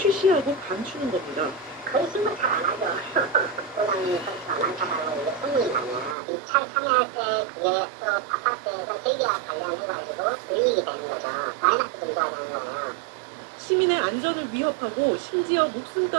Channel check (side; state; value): left; drops out; at 6.2 s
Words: 감추는 겁니다. 거의 신고 잘 안 하죠. 고장이 건수가 많다고 이게 소문이 나면 입찰 참여할 때 그게 또 아파트에서 설계와 관련해가지고 불이익이 되는 거죠. 마이너스 증가가 되는 거예요. 시민의 안전을 위협하고 심지어